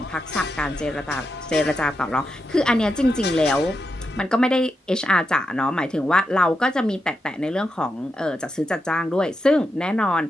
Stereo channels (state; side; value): normal; both; correlation 0.86